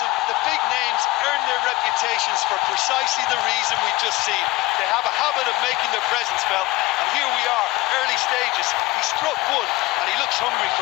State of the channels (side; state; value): right; quieter; 20.3 dB